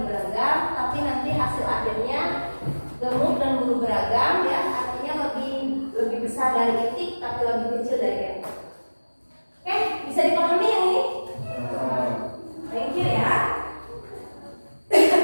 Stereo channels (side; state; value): both; inverted; correlation -1.00